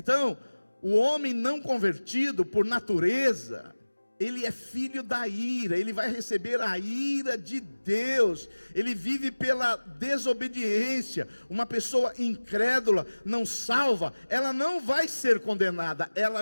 o homem não convertido por natureza, ele é filho da ira, ele vai receber a ira de Deus, ele vive pela desobediência. Uma pessoa incrédula, não salva, ela não vai ser condenada,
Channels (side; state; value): both; inverted; correlation -1.00